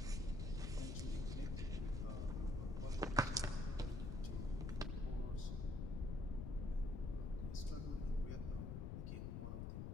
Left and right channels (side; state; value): left; noise; rumble, 2 dB below the sound